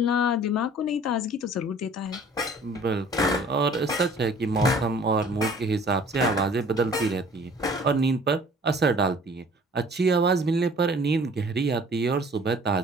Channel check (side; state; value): both; normal; correlation 0.51